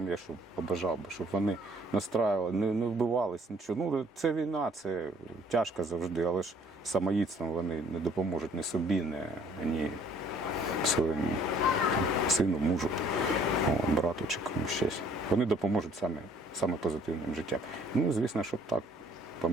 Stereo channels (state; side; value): normal; both; correlation 0.60